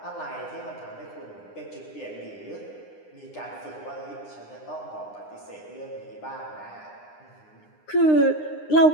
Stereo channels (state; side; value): late; right; 9.8 ms